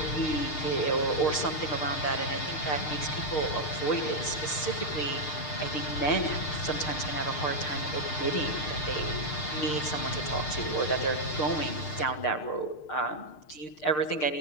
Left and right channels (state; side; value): late; right; 6.6 ms